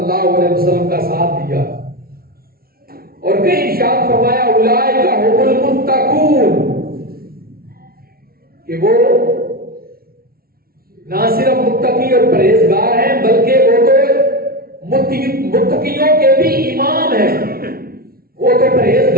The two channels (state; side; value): late; left; 0.44 ms